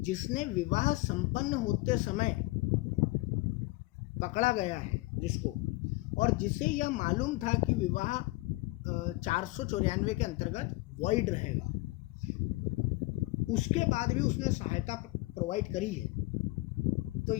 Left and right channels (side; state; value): right; quieter; 21.4 dB